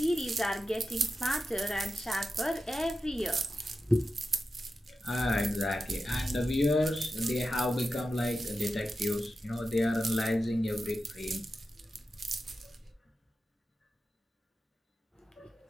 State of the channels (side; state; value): both; normal; correlation 0.92